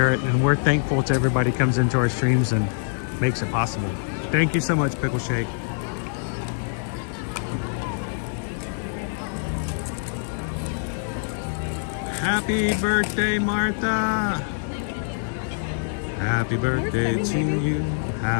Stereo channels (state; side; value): silent; right; digital silence